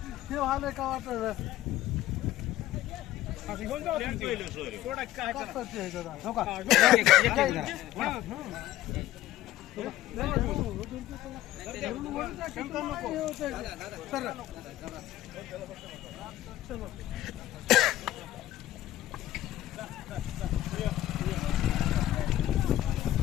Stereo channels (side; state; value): right; quieter; 14.4 dB